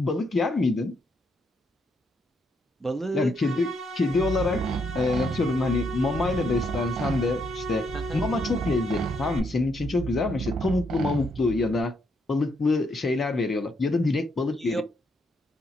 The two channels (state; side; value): normal; both; correlation 0.76